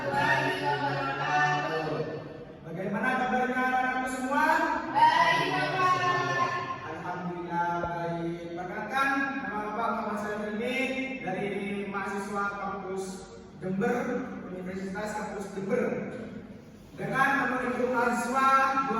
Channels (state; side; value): identical; both; correlation 1.00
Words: wabarakatuh. Bagaimana kabarnya anak-anakku semua? Baik, Bapak. Alhamdulillah baik. Perkenalkan, nama Bapak Muhammad Salim ini dari mahasiswa kampus Jember, Universitas Kampus Jember. Dengan nomor induk mahasiswa